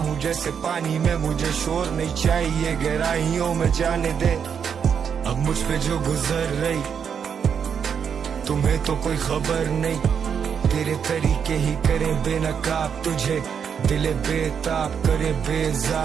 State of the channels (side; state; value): left; quieter; 7.2 dB